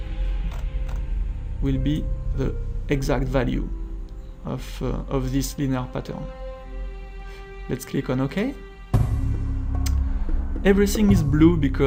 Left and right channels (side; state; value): both; identical; correlation 1.00